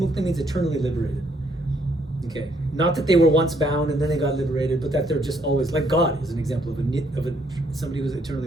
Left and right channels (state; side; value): normal; both; correlation 0.69